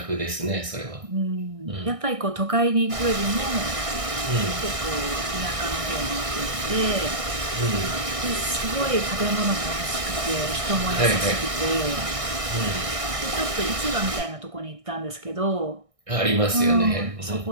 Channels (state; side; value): late; left; 1.6 ms